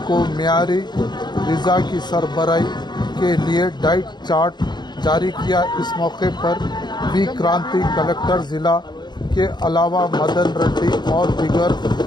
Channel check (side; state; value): right; late; 0.21 ms